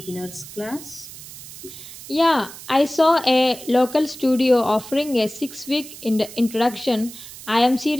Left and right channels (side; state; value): right; noise; hiss, 15 dB below the sound